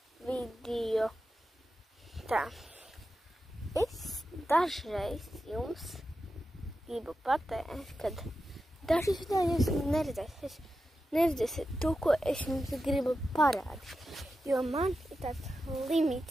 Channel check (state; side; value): normal; both; correlation 0.91